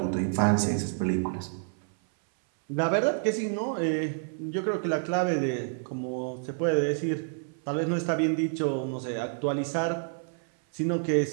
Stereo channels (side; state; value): left; silent; 59 dB below the other